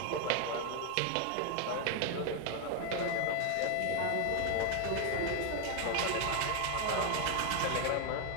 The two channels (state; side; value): different; both; correlation 0.01